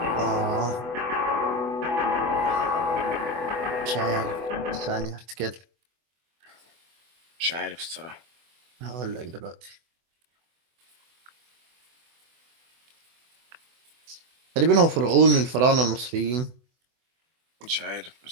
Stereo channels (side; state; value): left; late; 24 ms